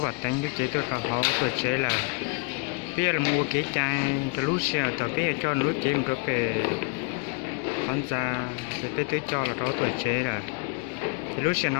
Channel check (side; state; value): right; quieter; 29.7 dB